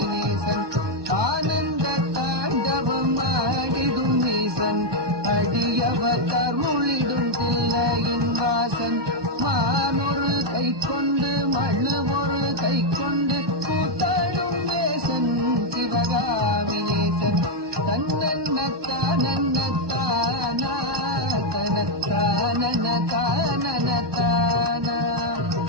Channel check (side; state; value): left; late; 1.2 ms